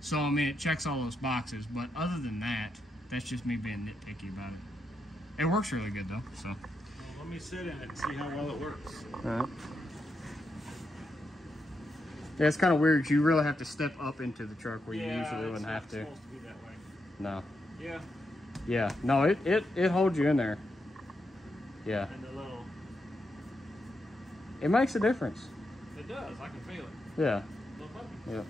I mean, it checks all those boxes. But other than that, that's just me being nitpicky about it. It works really good, though, so. Well, let me sit in it and see how well it works. All right. Yeah, it's kind of weird. You really have to step up into the truck where you usually wouldn't have to. Yeah, it's supposed to be that way. No. Yeah. Yeah. No, it holds you in there. Yeah. And the little... It makes a difference. It does. I can feel it. Yeah. Yeah.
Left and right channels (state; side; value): normal; both; correlation 0.83